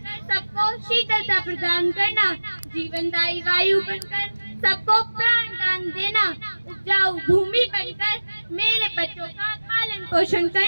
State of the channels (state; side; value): inverted; both; correlation -1.00